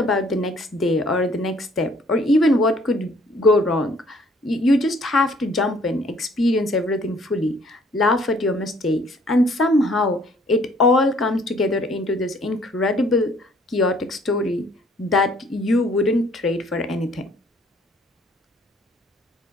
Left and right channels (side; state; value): both; normal; correlation 0.60